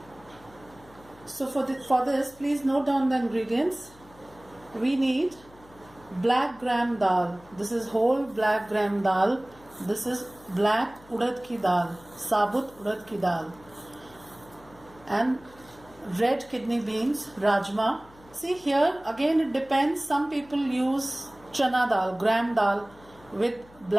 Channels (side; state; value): left; noise; hum, 24 dB below the sound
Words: So for this, please note down the ingredients. We need black gram dal. This is whole black gram dal. This is black urad ki dal, sabut urad ki dal, and red kidney beans, rajma. See here again it depends. Some people use chana dal, gram dal with